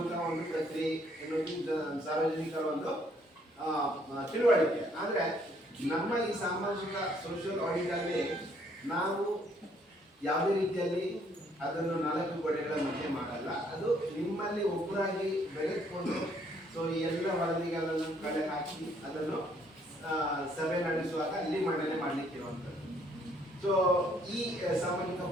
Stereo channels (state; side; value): normal; both; correlation 0.66